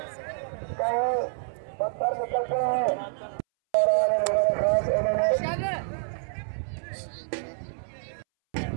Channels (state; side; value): silent; left; 60 dB below the other